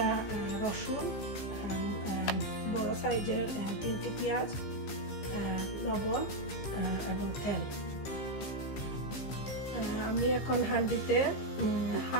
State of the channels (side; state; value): right; late; 15 ms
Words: রসুন, বড় সাইজের 3টি পেঁয়াজ, লবণ এবং তেল। আমি এখন হাঁড়িতে